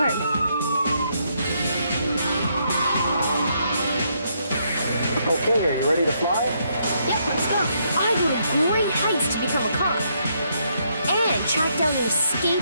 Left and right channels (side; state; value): both; inverted; correlation -0.75